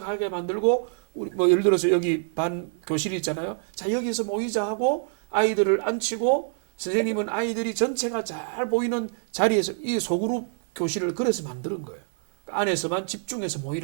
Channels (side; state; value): left; silent; 59 dB below the other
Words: 만들고 우리 뭐 예를 들어서 여기 반 교실이 있잖아요. 자 여기서 모이자 하고 아이들을 앉히고 선생님은 아이들이 전체가 잘 보이는 자리에서 이 소그룹 교실을 그래서 만드는 거예요. 안에서만 집중해서